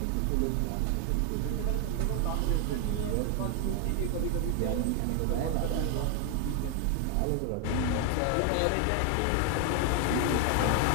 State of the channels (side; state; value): both; different; correlation 0.00